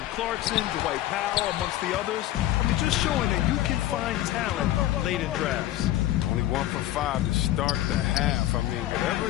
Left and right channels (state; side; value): quieter; right; 14.2 dB